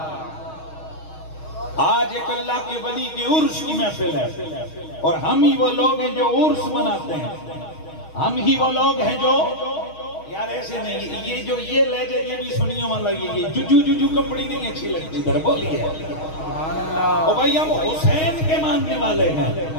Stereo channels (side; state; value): right; late; 6.4 ms